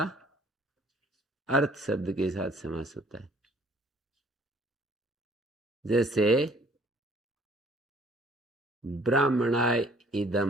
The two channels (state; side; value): normal; both; correlation 0.58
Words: अर्थ शब्द के साथ समास होता है। जैसे ब्राह्मणाय